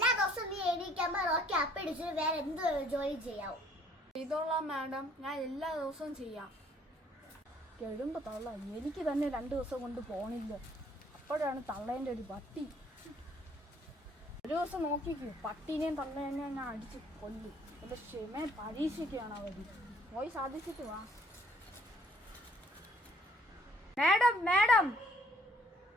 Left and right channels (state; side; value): normal; both; correlation 0.60